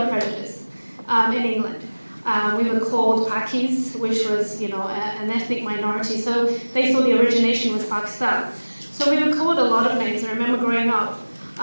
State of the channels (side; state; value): both; inverted; correlation -1.00